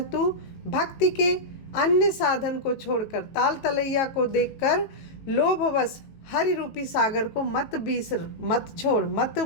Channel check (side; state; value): right; late; 18 ms